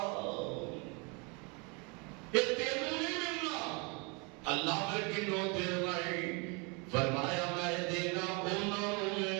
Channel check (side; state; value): left; quieter; 31.3 dB